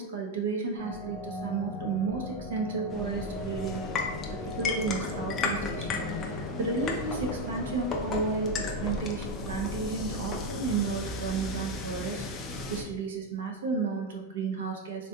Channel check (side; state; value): both; normal; correlation 0.09